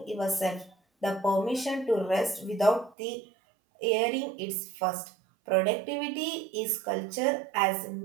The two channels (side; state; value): left; drops out; at 3.0 s